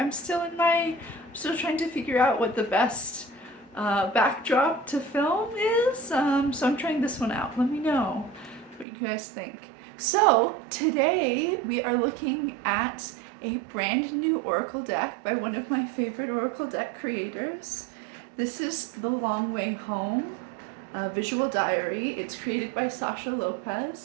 still trying to figure out what the best backdrop to film is. So I'm trying this one out. Let me know what you guys think. So today we are looking at a brand new oracle deck by one of my favorite oracle deck creators. This is The Long Way Home visual diary. It's created by Sasha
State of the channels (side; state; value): left; drops out; at 8.8 s